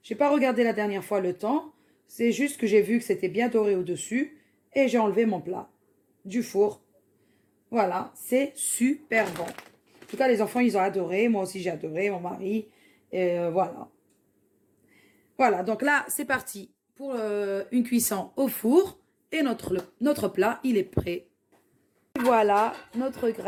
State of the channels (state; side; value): identical; both; correlation 1.00